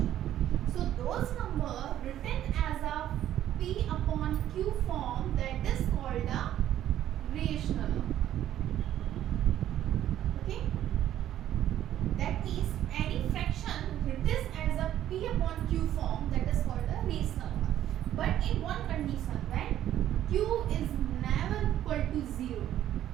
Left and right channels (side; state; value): left; quieter; 11.9 dB